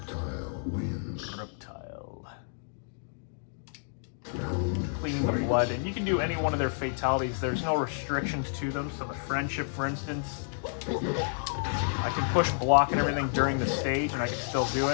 wins. Reptile. Cleaning the blood, and you can do any one of their fatalities. There's no restrictions to them. So the friendship, for instance, I can push block and everything during the stage, and I can still do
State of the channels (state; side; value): silent; right; digital silence